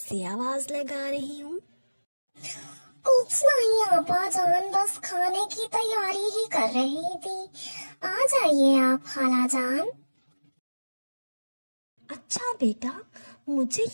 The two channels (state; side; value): inverted; both; correlation -1.00